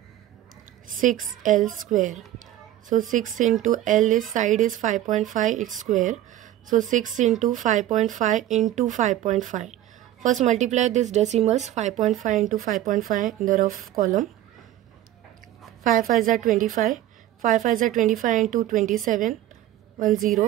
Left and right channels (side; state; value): left; quieter; 13.3 dB